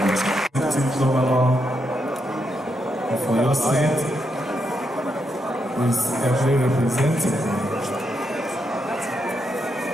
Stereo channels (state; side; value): normal; both; correlation 0.81